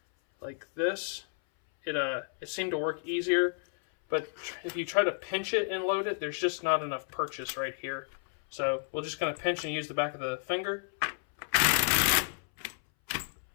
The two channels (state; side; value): silent; right; 57 dB below the other